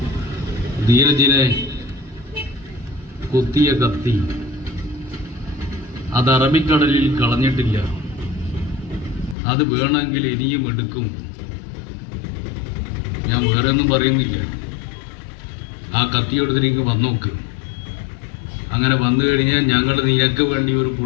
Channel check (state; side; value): drops out; right; at 9.3 s